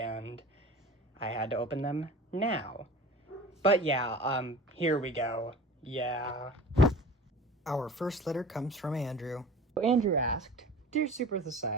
I had to open them now. But yeah, here we go. Yeah. Our first letter comes from Andrew. Andrew asked, Dear Super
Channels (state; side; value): normal; both; correlation 0.40